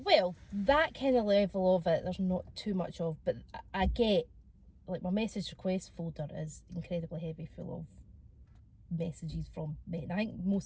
that kind of level of it, there's not too much of, but I get, like, my message request folder is incredibly heavy, full of messages from men. I think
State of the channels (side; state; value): both; identical; correlation 1.00